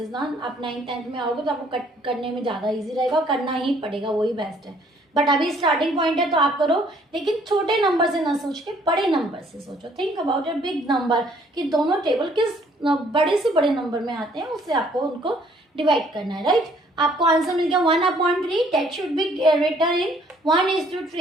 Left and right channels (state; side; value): normal; both; correlation 0.62